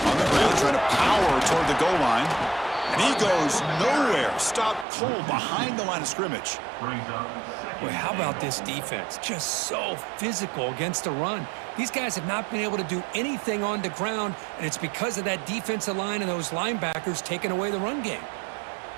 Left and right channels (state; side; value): drops out; left; at 4.9 s